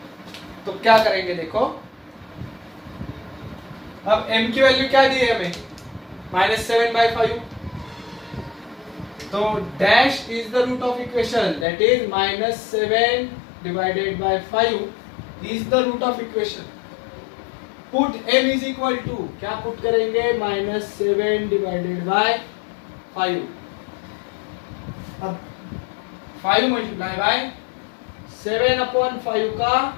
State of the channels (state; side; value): drops out; right; at 11.7 s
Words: तो क्या करेंगे देखो, अब m की वैल्यू क्या दी है हमें -7/5, तो dash is the root of equation, that is -7 divided by 5 is the root of equation. Put m is equal to, क्या पुट करेंगे -7 डिवाइडेड बाय 5, अब 5 मल्टीप्लाई बाय 7/5 का